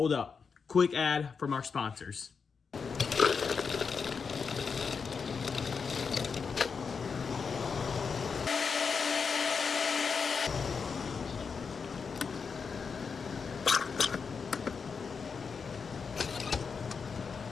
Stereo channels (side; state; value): right; quieter; 5.6 dB